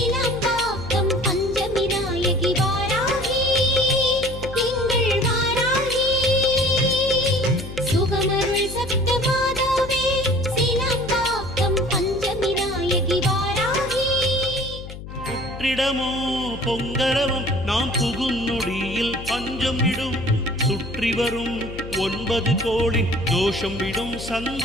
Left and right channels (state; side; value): noise; left; hum, 12 dB below the sound